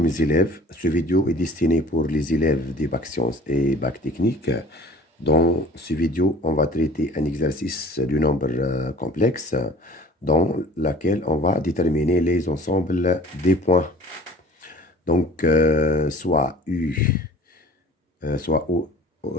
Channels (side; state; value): both; normal; correlation 0.46